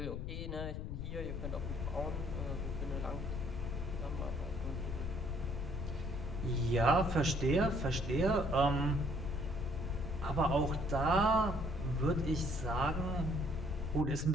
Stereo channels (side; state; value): left; noise; rumble, 4 dB below the sound